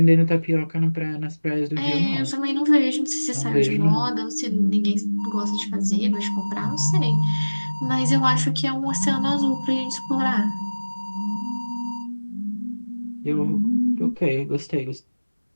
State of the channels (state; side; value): inverted; both; correlation -1.00